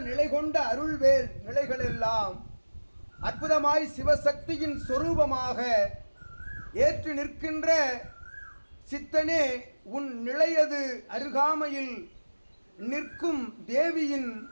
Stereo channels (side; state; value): both; inverted; correlation -1.00